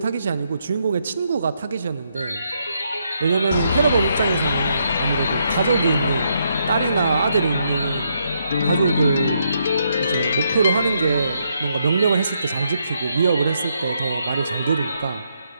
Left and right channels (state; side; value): inverted; both; correlation -0.77